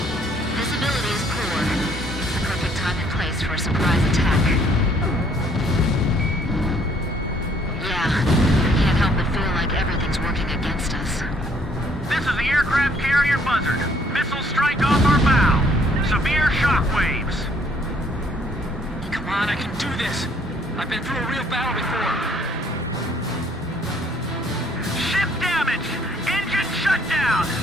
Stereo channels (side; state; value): both; normal; correlation 0.63